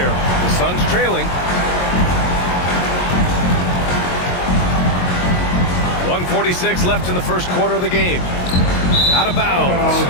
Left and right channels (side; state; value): right; late; 22 ms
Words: The Suns trailing. 1:46 left in the first quarter of the game. Out of